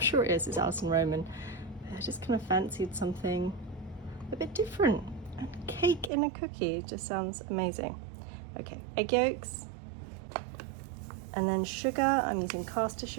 sure it is. It's Alison Roman. I just kind of fancied something a bit different. And cake in a cookie just sounds amazing. Okay, egg yolks. And then sugar, I'm using caster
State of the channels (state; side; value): drops out; left; at 6.1 s